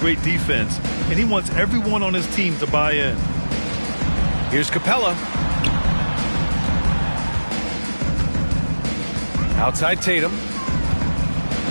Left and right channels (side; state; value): both; inverted; correlation -1.00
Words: defense, and he wants everyone on his team to buy in. Here's Capella. Outside Tatum.